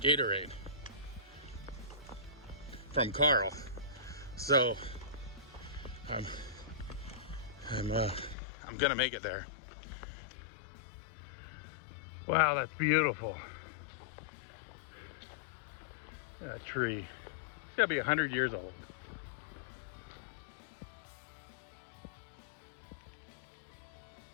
Gatorade from Carl. So I'm gonna make it there. Wow, that's beautiful. That tree. It's gotta be 100 years old.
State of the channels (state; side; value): drops out; right; at 8.3 s